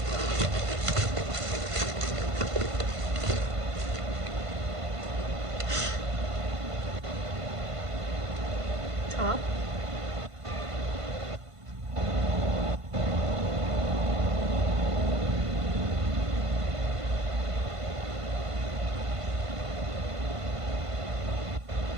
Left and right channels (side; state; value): left; late; 1.5 ms